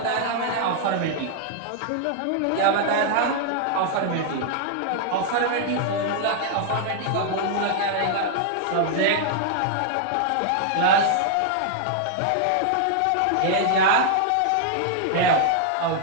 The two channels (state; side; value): different; both; correlation 0.00